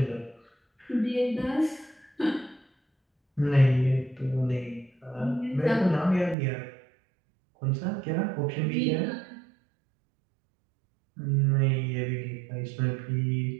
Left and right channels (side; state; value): left; drops out; at 6.4 s